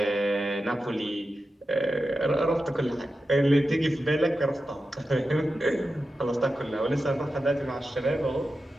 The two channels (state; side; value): normal; both; correlation 0.91